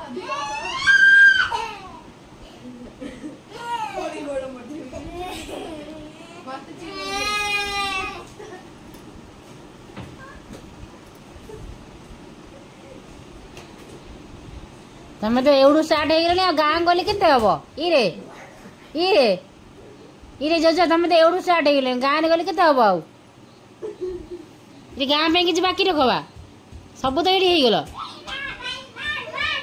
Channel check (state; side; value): identical; both; correlation 1.00